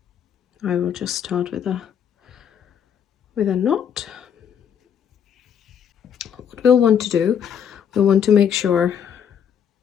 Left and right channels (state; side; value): quieter; right; 8.3 dB